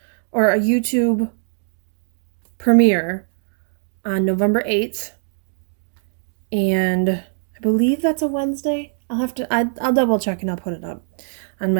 or a YouTube premiere on November 8th. And I believe that's a Wednesday. I'll double check and I'll put it up on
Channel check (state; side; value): silent; left; digital silence